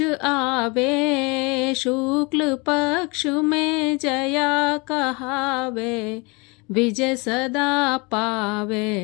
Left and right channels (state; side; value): quieter; right; 28.3 dB